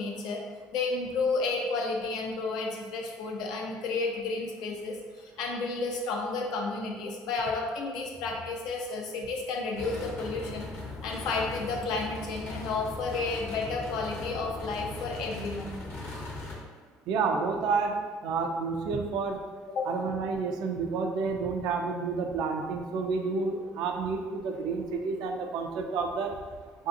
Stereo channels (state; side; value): normal; both; correlation 0.49